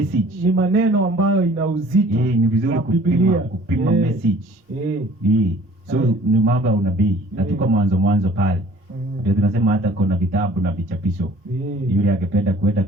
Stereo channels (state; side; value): normal; both; correlation 0.51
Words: Ni maneno ambayo ina uzito. Ni vizuri kupima message. So ni mambo ya unabii. Na tuko mwanzo pale. Ndio tunasema hata kuna vitabu na vichapisho. Yule angependa kwenda